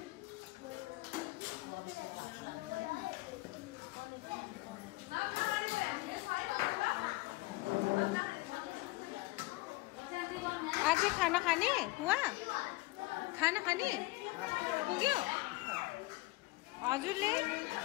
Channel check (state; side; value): quieter; right; 21.5 dB